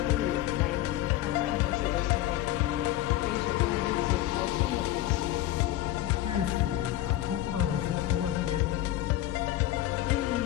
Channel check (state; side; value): quieter; right; 14.1 dB